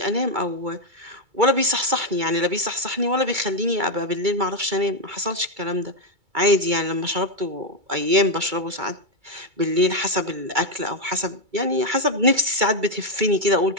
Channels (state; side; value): late; left; 2.3 ms